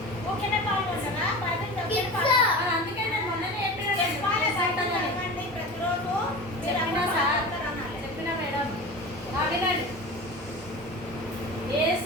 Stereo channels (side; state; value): both; normal; correlation 0.32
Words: అందుకే నేను మొన్ననే చెప్పిన సార్, చెప్పిన మేడం. వినండి.